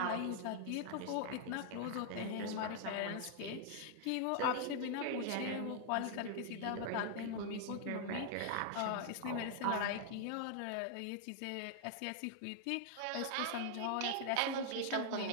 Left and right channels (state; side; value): different; both; correlation 0.00